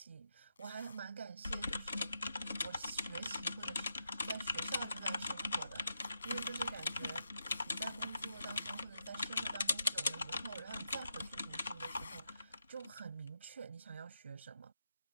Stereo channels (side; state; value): both; inverted; correlation -0.84